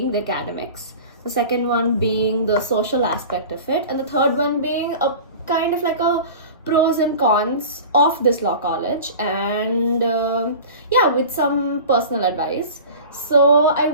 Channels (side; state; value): both; inverted; correlation -0.37